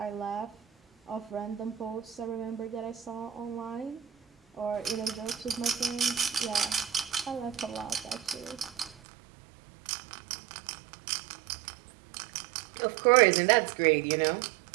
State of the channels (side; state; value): left; drops out; at 9.0 s